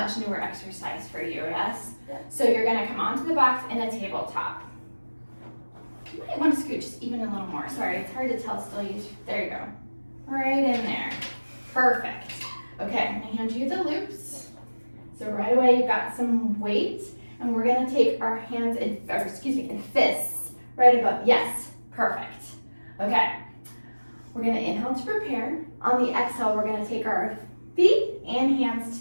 newer exercise for you, yes? Yeah. So you're gonna come onto the box in a tabletop. You might want to scoot just even a little more. Sorry, it's hard to tell still. There you go. Right in there. Perfect. Okay, I'm gonna hand you the loops. So right away you've got some weight, and we're gonna take our hands in fists right above. Yes, perfect. Okay, we're gonna inhale to prepare. On the exhale, we're gonna take our feet and hands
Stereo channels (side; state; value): both; inverted; correlation -1.00